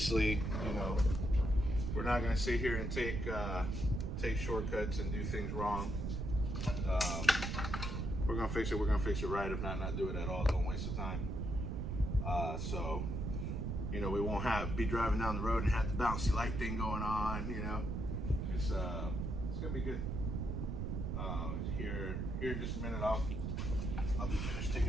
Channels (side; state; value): right; noise; rumble, 2 dB below the sound